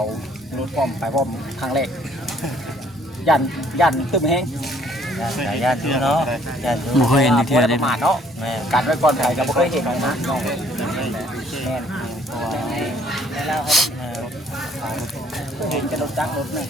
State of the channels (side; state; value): both; normal; correlation 0.62